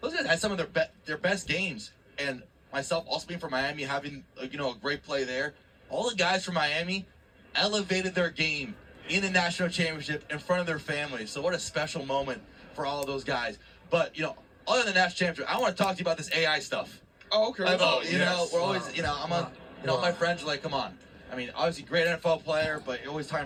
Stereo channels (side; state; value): both; identical; correlation 1.00